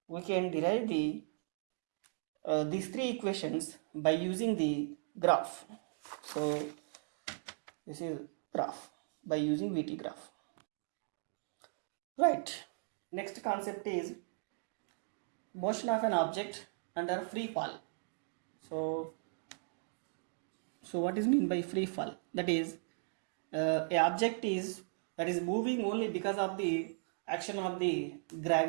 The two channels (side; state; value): left; silent; digital silence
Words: we can derive the these 3 equations by using the graph. So this is graph by using VT graph. Right. Next concept is motion of an object under free fall. So what is meant by free fall? That is a object is moving only because of the action of the